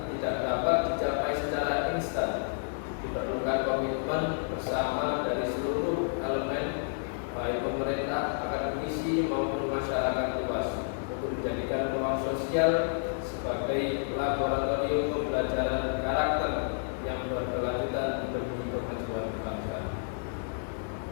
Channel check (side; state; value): right; silent; digital silence